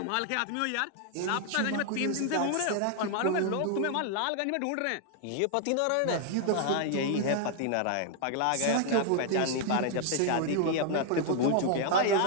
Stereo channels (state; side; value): different; both; correlation 0.00